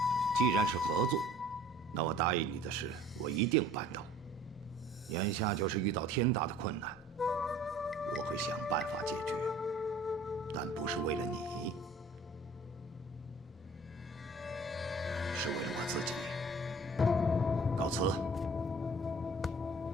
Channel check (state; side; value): normal; both; correlation 0.49